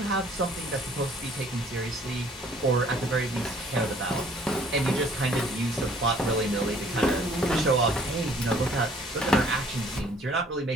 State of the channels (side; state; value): both; normal; correlation 0.58